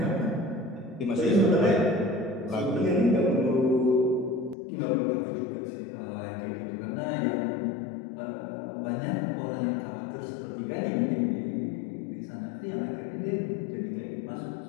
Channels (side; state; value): right; drops out; at 4.5 s